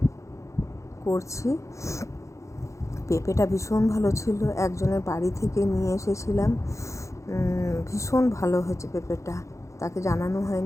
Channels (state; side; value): late; right; 0.15 ms